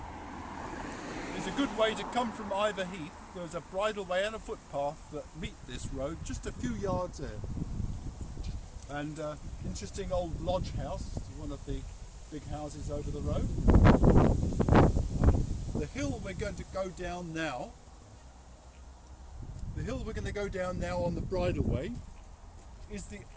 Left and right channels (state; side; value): identical; both; correlation 1.00